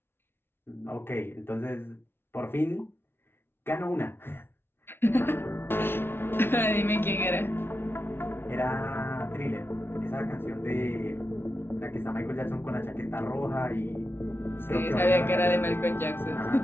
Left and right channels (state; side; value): late; right; 0.11 ms